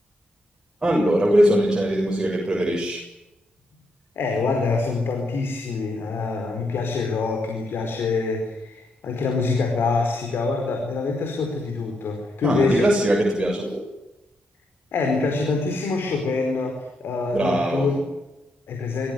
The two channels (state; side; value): normal; both; correlation 0.79